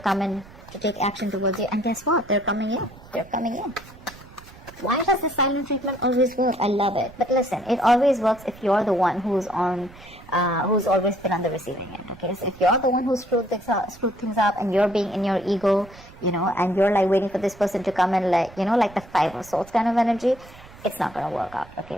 in to take action towards you. And guess what? They're coming in. They're coming in. Why does the silent treatment always work? I love it. But listen, it always works if you're the one who's always been on the receiving end, okay? So if you're the one who screwed things up and you're being in your ego, you know, and you're like waiting for this person to come in, like, you know, like the Five of Swords kind of energy, it's not going to work out,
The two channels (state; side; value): noise; right; rumble, 21 dB below the sound